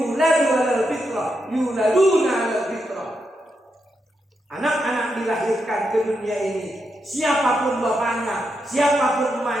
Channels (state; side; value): normal; both; correlation 0.84